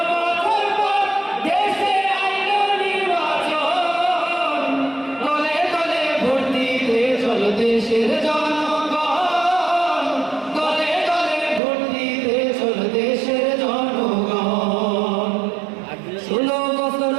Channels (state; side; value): drops out; left; at 11.6 s